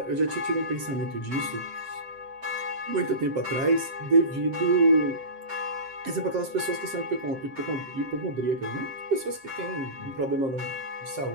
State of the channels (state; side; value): late; left; 7.6 ms